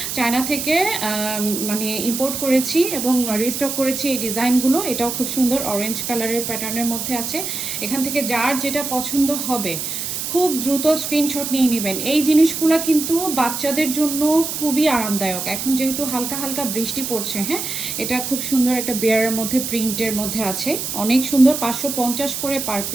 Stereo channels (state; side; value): noise; right; hiss, 4 dB below the sound